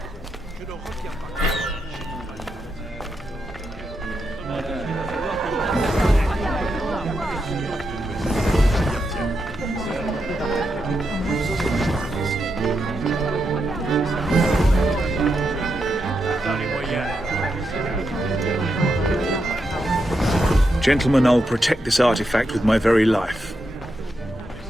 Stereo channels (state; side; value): normal; both; correlation 0.84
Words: Gentlemen, I'll protect this artifact with my very life.